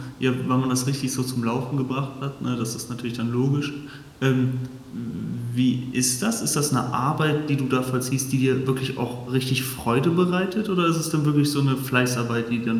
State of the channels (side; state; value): both; identical; correlation 1.00